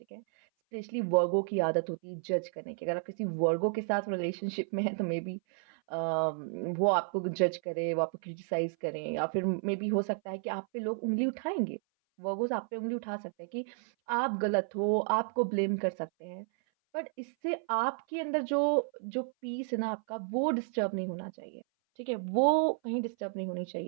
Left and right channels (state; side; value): silent; left; 56 dB below the other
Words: ठीक है? स्पेशली वर्गों की आदत होती है जज करने की। अगर आप किसी वर्गों के साथ रिलेशनशिप में हैं तो मेबी वो आपको जज करें, वो आपको क्रिटिसाइज़ करें या फिर मेबी हो सकता है कि आप पे लोग उँगली उठाएँगे। वर्गोज़ आप पे उँगली उठा सकते हैं कि आप गलत हो, आपको ब्लेम कर सकते हैं। बट इससे आपके अंदर जो जो पीस है ना आपका, वो डिस्टर्ब नहीं होना चाहिए, ठीक है? वो कहीं डिस्टर्ब नहीं होनी